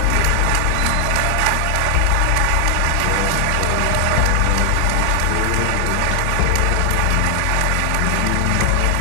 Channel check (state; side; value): different; both; correlation 0.00